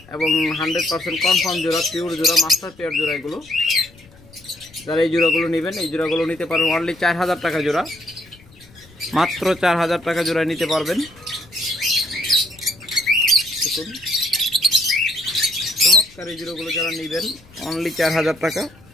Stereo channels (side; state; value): left; noise; rumble, 25 dB below the sound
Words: এবং 100% কনফার্ম জোড়া, পিওর জোড়া, মাস্টার পেয়ার জোড়া এগুলো। যারা এই জোড়াগুলো নেবেন এই জোড়াগুলো নিতে পারবেন অনলি 4000 টাকা জোড়া। মাত্র 4000 টাকা জোড়া নিতে পারবেন। দেখুন চমৎকার এই জোড়াগুলো যারা নেবেন অনলি 4000 টাকা।